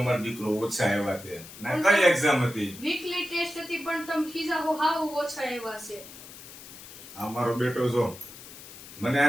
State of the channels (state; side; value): noise; left; hiss, 16 dB below the sound